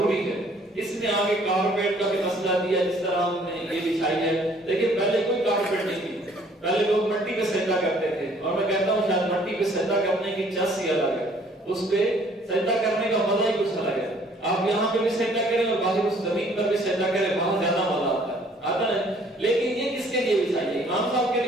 ہے. اس میں آگے کارپیٹ کا بھی مسئلہ دیا, جس طرح ہم نے یہ بچھائی ہے. دیکھیں پہلے کوئی کارپیٹ نہیں تھی, پہلے لوگ مٹی پہ سجدہ کرتے تھے, اور میں کہتا ہوں شاید مٹی پہ سجدہ کرنے کی چس ہی الگ ہے, اس پہ سجدہ کرنے کا مزہ ہی کچھ الگ ہے. آپ یہاں پہ بھی سجدہ کریں اور باہر اس زمین پر بھی سجدہ کریں, بہت زیادہ مزہ آتا ہے. لیکن یہ کس کے لیے بچھائی ہے؟ امام صاحب کے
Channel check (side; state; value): both; normal; correlation 0.59